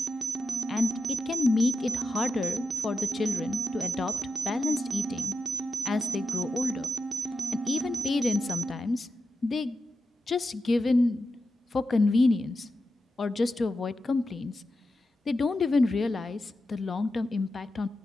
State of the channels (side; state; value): both; normal; correlation 0.90